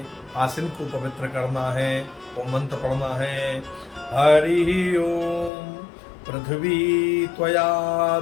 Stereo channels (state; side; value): drops out; right; at 5.5 s